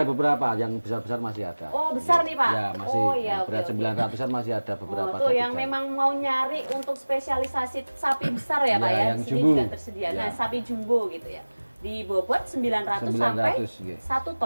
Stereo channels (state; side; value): inverted; both; correlation -1.00